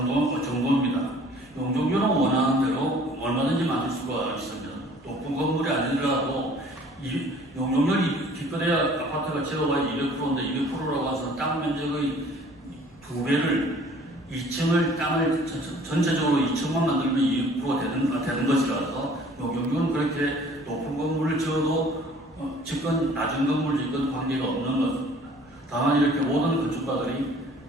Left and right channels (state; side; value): noise; right; hum, 30 dB below the sound